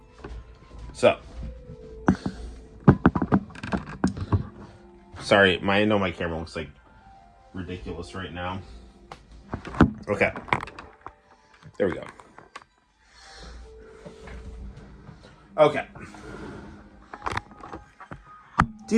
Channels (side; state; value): both; identical; correlation 1.00